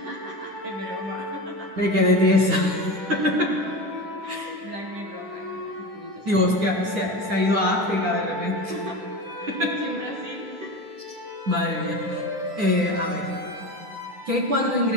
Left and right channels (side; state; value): left; late; 10 ms